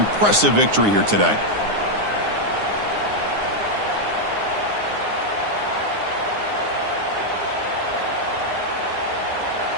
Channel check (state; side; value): late; left; 9.7 ms